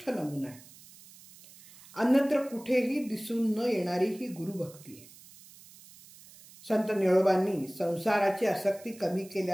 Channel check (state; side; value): noise; right; hiss, 21 dB below the sound